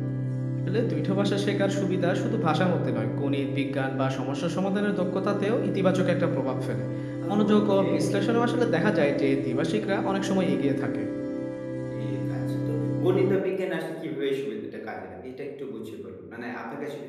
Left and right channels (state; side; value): identical; both; correlation 1.00